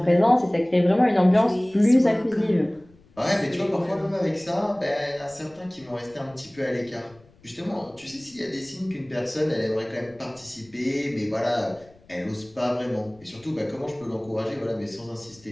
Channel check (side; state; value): left; noise; rumble, 28 dB below the sound